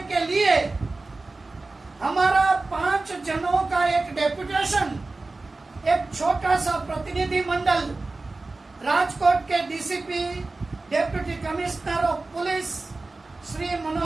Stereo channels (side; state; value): left; quieter; 3.4 dB